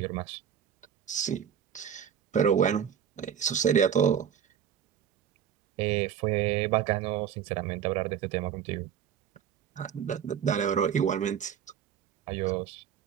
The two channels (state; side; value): quieter; left; 8.8 dB